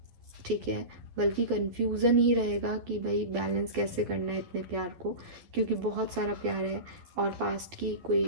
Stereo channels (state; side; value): late; left; 11 ms